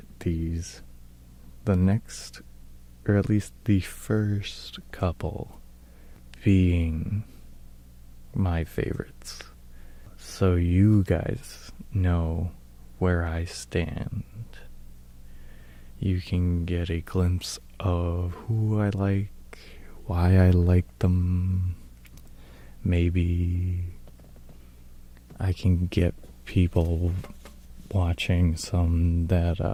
these, the next, or at least the first couple, being my favorites, so you guys know where I stand. You can get a glimpse of who I like, why I like them. Maybe I can get people watching some that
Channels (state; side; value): identical; both; correlation 1.00